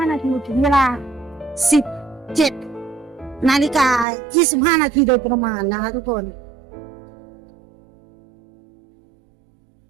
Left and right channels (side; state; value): left; drops out; at 4.0 s